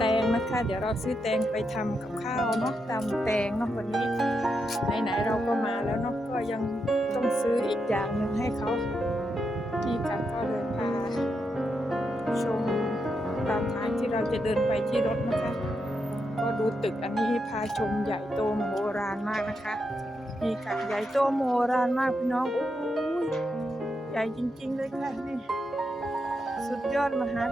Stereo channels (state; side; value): normal; both; correlation 0.84